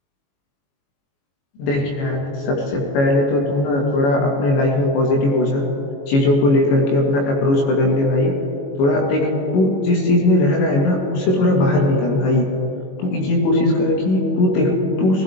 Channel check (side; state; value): right; late; 22 ms